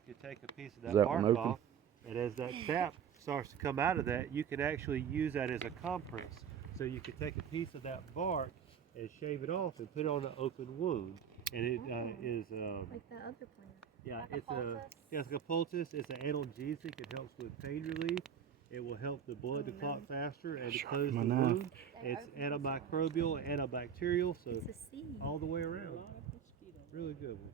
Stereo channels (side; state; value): left; quieter; 8.0 dB